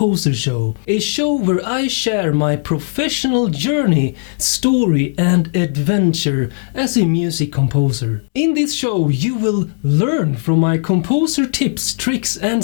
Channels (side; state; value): right; silent; digital silence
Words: Show, a show where I share my professional journey, story and adventure as a music composer. In this show you will learn from my composer tips, tricks